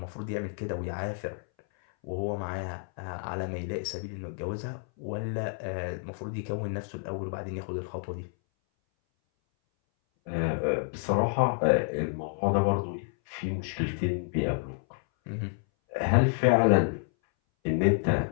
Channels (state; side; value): silent; right; 58 dB below the other